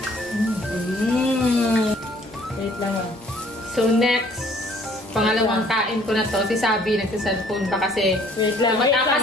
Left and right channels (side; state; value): both; normal; correlation 0.58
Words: Wait lang So next, pangalawang kain ko na to. Si Sabi nagsa-cellphone pa kasi. Wait lang.